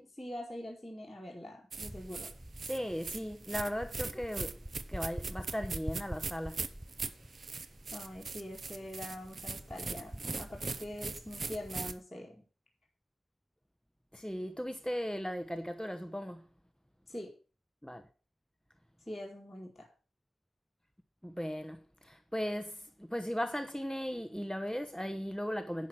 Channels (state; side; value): normal; both; correlation 0.96